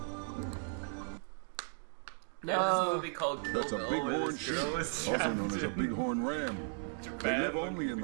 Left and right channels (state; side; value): silent; left; 54 dB below the other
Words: There's this movie called Kill That's a Bill where bighorn this sheep, girl is also trapped known as a in bighorn ram. They Japan live only in